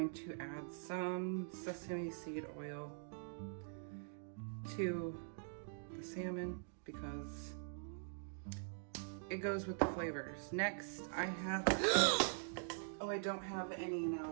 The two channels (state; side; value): silent; left; digital silence